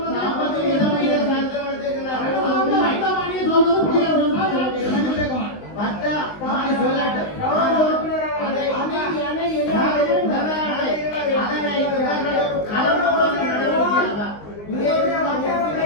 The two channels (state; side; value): late; right; 19 ms